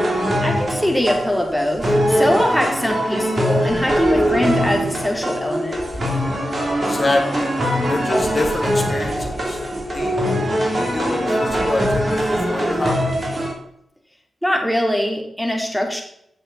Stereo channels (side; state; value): both; normal; correlation 0.91